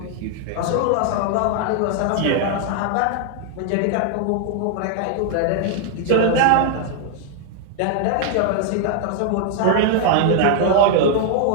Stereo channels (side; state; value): both; different; correlation 0.00